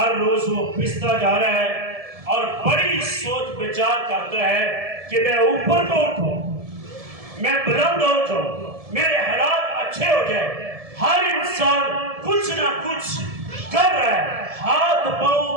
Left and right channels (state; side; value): late; left; 1.7 ms